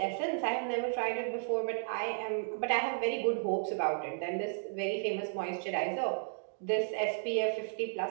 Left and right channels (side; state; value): left; silent; digital silence